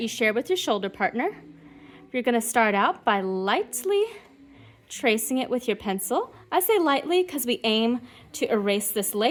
you share with your shoulder partner. You're going to start out by lightly tracing it with your pencil. I say lightly because we aim to erase this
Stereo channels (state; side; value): identical; both; correlation 1.00